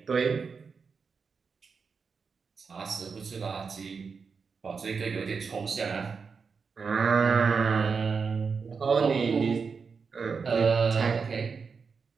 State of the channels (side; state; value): left; quieter; 5.4 dB